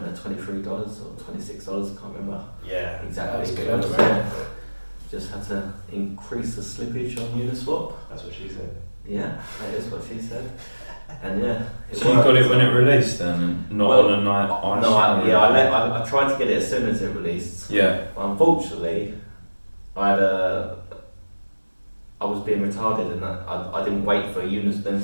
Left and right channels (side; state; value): both; inverted; correlation -1.00